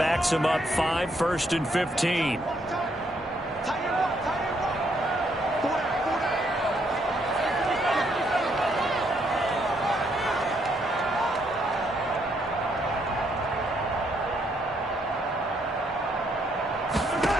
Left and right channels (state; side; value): normal; both; correlation 0.73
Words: him up 5, first and 15.